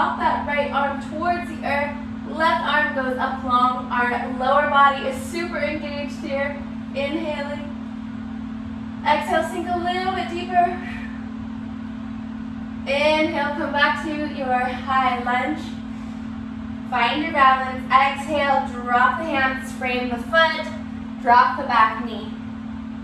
that right arm towards the earth. Left arm goes up long. Our lower body is super engaged here. Inhaling. Exhale, sink a little bit deeper. Inhale, come back to your high lunge. Find your balance. Exhale, drop the hands, frame the foot, drop the back knee.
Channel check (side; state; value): both; identical; correlation 1.00